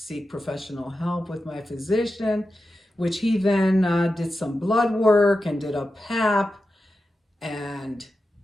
professional help with my physician, which he then did some blood work and did a PAP and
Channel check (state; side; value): normal; both; correlation 0.91